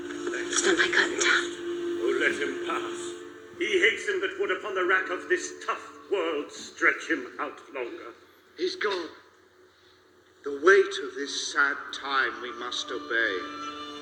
Stand my curtain down. Oh, let him pass. He hastened that would upon the rack of this tough world stretch him out longer. He's gone. The weight of this sad time we must obey.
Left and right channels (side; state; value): both; identical; correlation 1.00